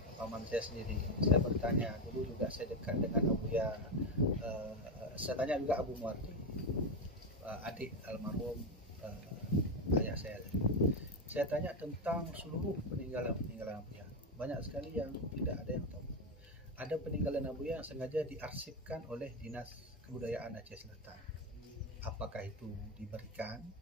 paman saya sendiri. Saya bertanya, dulu juga saya dekat dengan Buya, saya tanya juga Abu Muardi, adik almarhum ayah saya. Saya tanya tentang seluruh peninggalan Buya. Banyak sekali yang tidak ada yang tahu. Ada peninggalan Buya yang sengaja diarsipkan oleh Dinas Kebudayaan Aceh Selatan. Apakah itu diberikan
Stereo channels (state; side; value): normal; both; correlation 0.10